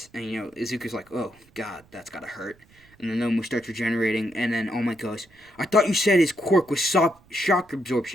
And, Izuku's like, oh, God, that's gotta hurt. And the Nomu starts regenerating, and then All Might goes, "I thought you said his quirk was shock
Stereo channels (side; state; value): right; noise; rumble, 29 dB below the sound